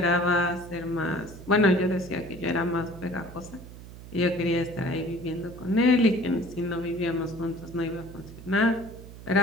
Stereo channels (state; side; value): noise; right; hum, 15 dB below the sound